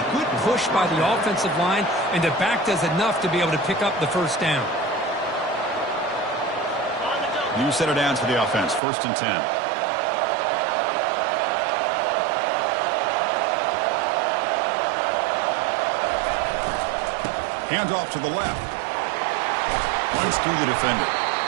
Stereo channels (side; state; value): left; drops out; at 8.8 s